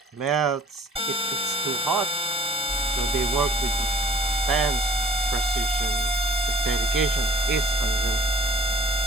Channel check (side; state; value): both; normal; correlation 0.53